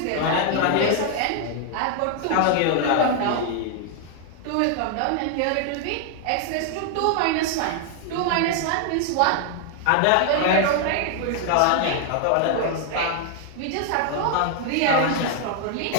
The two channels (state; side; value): different; both; correlation 0.00